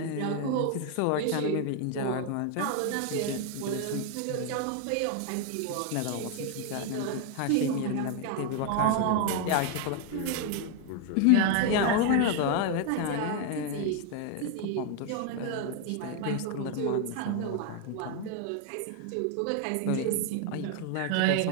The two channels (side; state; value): both; different; correlation 0.00